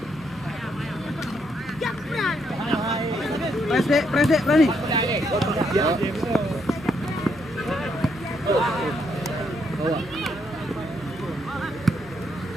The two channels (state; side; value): noise; left; hum, 22 dB below the sound